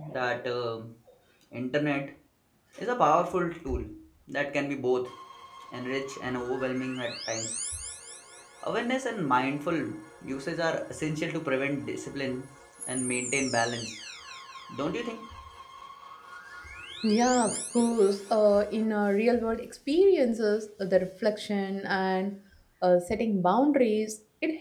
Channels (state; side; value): identical; both; correlation 1.00